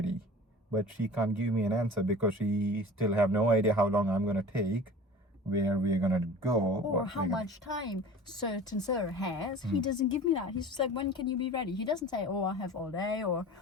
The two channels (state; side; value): normal; both; correlation 0.41